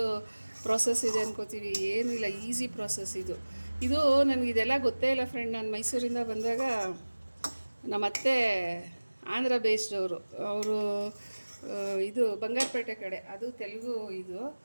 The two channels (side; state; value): both; inverted; correlation -1.00